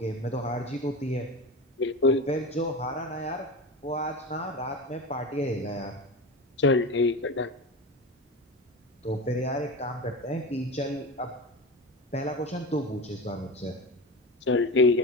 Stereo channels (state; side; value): normal; both; correlation 0.26